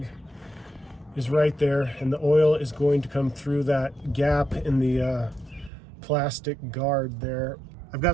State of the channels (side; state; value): left; drops out; at 5.7 s